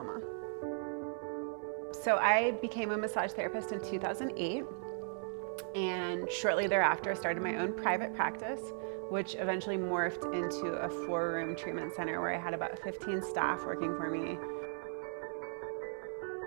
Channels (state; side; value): silent; left; 53 dB below the other